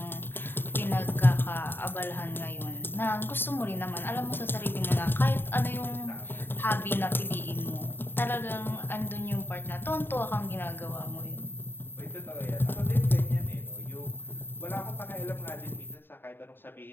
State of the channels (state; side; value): late; right; 0.098 ms